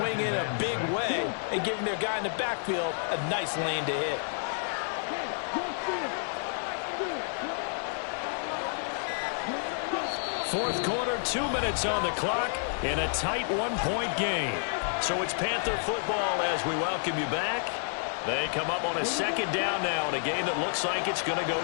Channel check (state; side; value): silent; right; digital silence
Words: in a big way and giving their guy in the backfield a nice lane to hit. Fourth quarter, 2 minutes on the clock in a tight 1-point game. So it's Panther football as we welcome you back. They come up on a 2nd down now in a game that looks like it's going to go